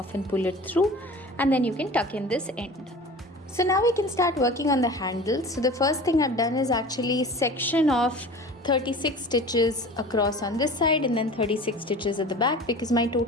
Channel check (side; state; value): both; normal; correlation 0.39